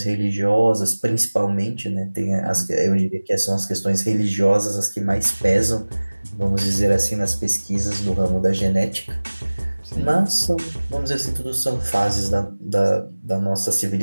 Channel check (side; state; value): both; inverted; correlation -1.00